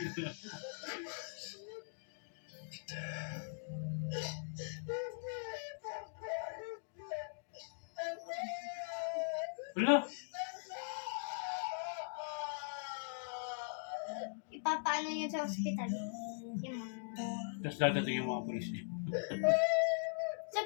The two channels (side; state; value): right; silent; digital silence